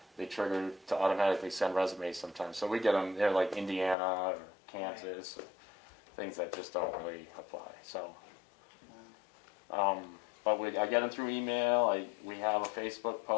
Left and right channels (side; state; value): right; drops out; at 4.0 s